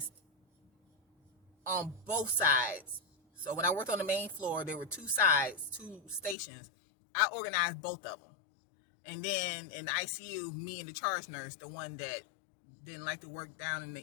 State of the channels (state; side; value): drops out; right; at 6.4 s